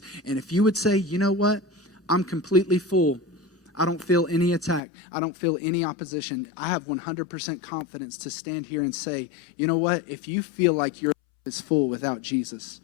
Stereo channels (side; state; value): right; drops out; at 4.8 s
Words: And if you would say, you know what? I'm completely full. I don't feel any attack. I don't feel any opposition. I have 100% confidence to stand here and say, you know what? If you feel like your life is full without Jesus,